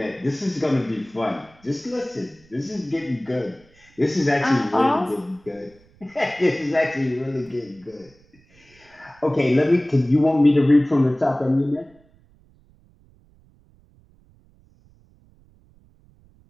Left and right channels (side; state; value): right; noise; rumble, 30 dB below the sound